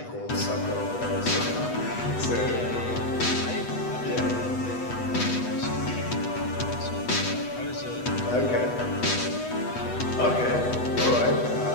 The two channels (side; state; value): right; late; 8.1 ms